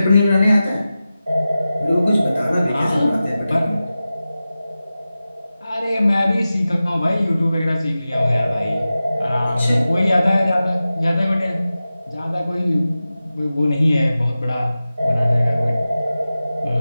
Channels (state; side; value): inverted; both; correlation -0.94